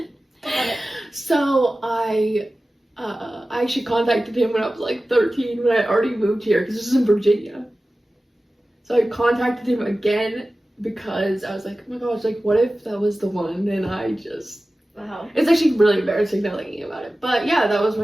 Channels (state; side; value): normal; both; correlation 0.96